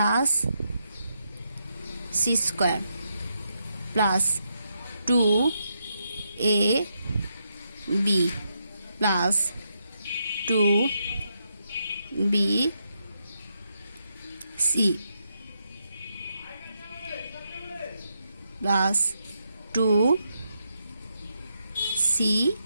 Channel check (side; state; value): both; inverted; correlation -0.82